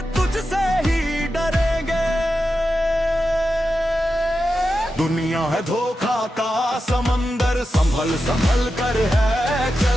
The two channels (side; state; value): both; normal; correlation 0.90